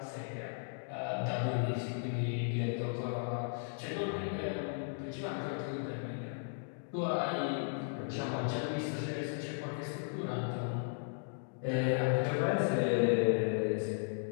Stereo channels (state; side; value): silent; right; digital silence